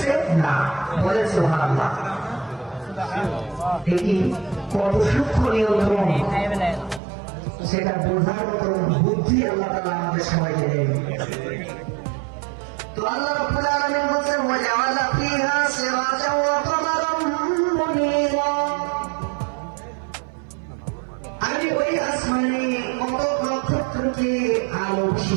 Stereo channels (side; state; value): left; drops out; at 7.0 s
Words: না। বলে সুবহানাল্লাহ। এটি কত সূক্ষ্ম নিয়ন্ত্রণ সেটা বোঝার মতো বুদ্ধি আল্লাহ তাআলা আমাদের সবাইকে দেন। তো আল্লাহ রাব্বুল আলামিন বলেন ওয়া জাআলা ফিহা সিরাজাও ওয়া কামারাম মুনীরা। আমি ওই আসমানে কত নক্ষত্রকে আলো